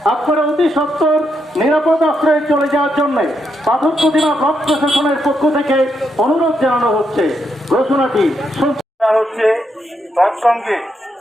আপনারা অতি সত্বর নিরাপদ আশ্রয়ে চলে যাওয়ার জন্য পাথর প্রতিমা ব্লক প্রশাসনের পক্ষ থেকে অনুরোধ জানানো হচ্ছে। ঘোষণাটি হচ্ছে তৎসঙ্গে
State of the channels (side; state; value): both; normal; correlation 0.80